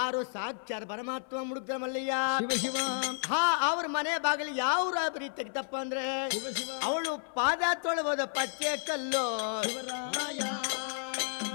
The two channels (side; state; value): right; silent; 57 dB below the other